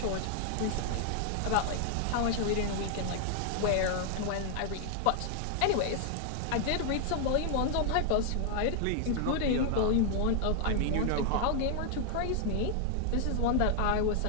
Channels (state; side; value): different; both; correlation 0.00